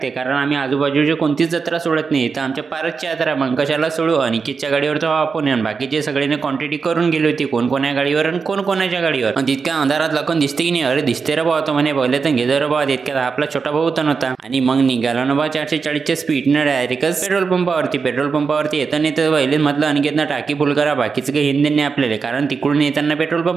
कारण आम्ही आजूबाजूची कोणतीच जत्रा सोडत नाही. तर आमच्या पारसची यात्रा मग कशाला सोडू. अनिकेतच्या गाडीवर तर आपण आणि बाकीचे सगळ्यांनी क्वांटिटी करून गेली होती, कोण कोण्या गाडीवर आणि कोण कोणाच्या गाडीवर. आणि तितक्या अंधारात लखन दिसते की नाही. अरे दिसते रे भाऊ, तो म्हणे पहिले तर घेदर रे भाऊ. तितक्यात आपला छोटा भाऊ तर नव्हता आणि मग निघाला ना बा 440च्या स्पीडनं डायरेक्टच पेट्रोल पंपावरती येताना तर पहिले म्हटलं अनिकेतनं टाकी फुल करा, बाकीचं काही हिंदी नाही आपल्याला, कारण तिकडून येताना पेट्रोल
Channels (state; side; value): quieter; left; 5.2 dB